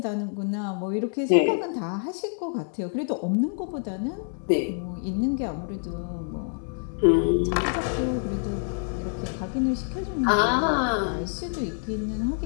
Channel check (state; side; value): silent; right; 58 dB below the other